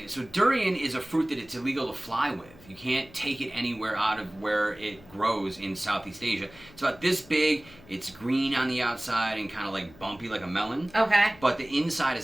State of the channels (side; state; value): left; noise; hum, 23 dB below the sound